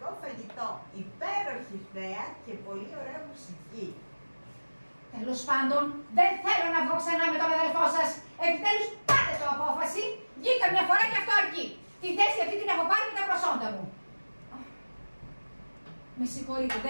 φαγητό, υπέροχη θέα και πολύ ωραία μουσική. Τέλος πάντων, δεν θέλω να βγω ξανά με τον αδελφό σας. Επιτέλους, πάτε το απόφαση. Βγήκα μια φορά και αυτό αρκεί. Τη θέση αυτή την έχω πάρει με τα προσόντα μου. Με συγχωρείτε,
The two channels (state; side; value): inverted; both; correlation -1.00